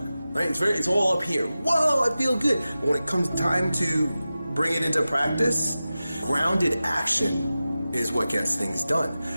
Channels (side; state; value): both; inverted; correlation -0.94